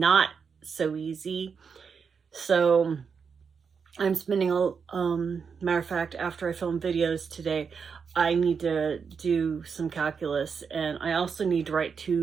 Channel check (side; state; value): left; quieter; 6.0 dB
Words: so easy. So I'm spending matter of fact, after I film videos today, I need to do some calculus, and I also need to write